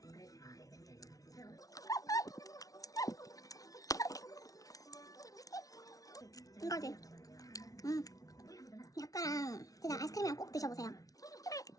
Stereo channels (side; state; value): right; late; 0.18 ms